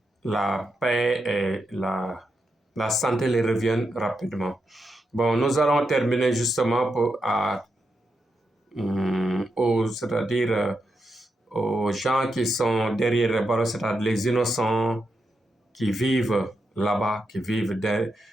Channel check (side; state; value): both; normal; correlation 0.85